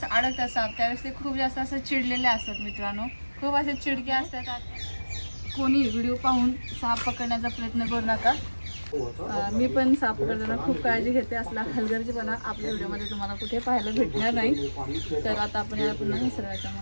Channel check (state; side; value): inverted; both; correlation -1.00